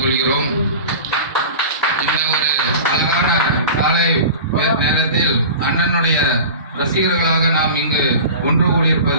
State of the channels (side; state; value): both; inverted; correlation -0.35